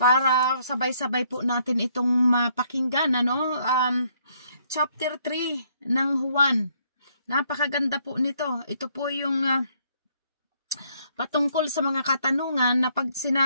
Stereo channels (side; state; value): both; inverted; correlation -0.68